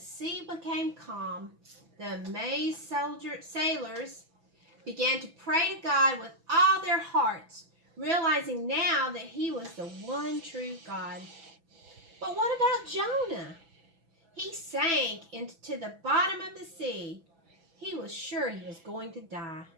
became calm. The amazed sailors began to pray to God with all their hearts, realizing now that he was the one true God. But what about Jonah? He sank into the bottom of the sea. He was sure he was going to die.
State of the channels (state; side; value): late; left; 6.0 ms